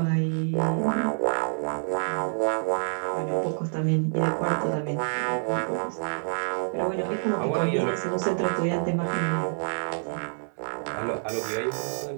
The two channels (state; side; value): silent; left; 60 dB below the other